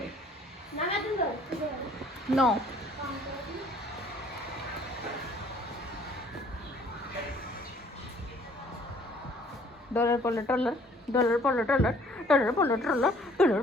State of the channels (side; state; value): both; normal; correlation 0.58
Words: ना मैं तुम धो। नो। काम करो। डॉलर पोलो डॉलर, डॉलर पोलो डॉलर, डॉलर पोलो डॉलर, डॉलर